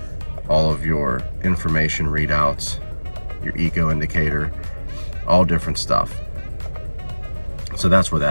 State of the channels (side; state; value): both; inverted; correlation -1.00